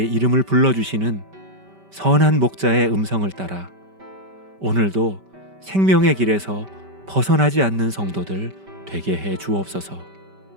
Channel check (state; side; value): late; left; 5.1 ms